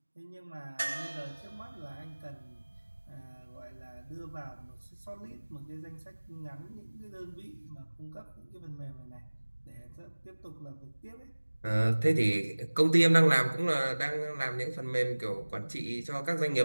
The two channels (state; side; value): inverted; both; correlation -1.00